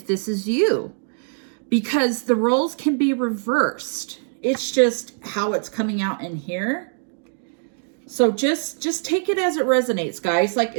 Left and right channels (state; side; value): silent; left; 64 dB below the other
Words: this is you. Because the roles can be reversed. It's just how it's coming out in here. So just take it as it resonates, guys. Like,